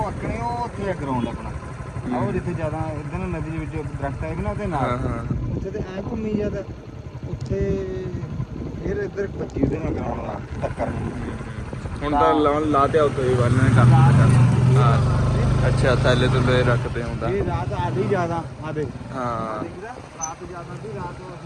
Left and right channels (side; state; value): both; identical; correlation 1.00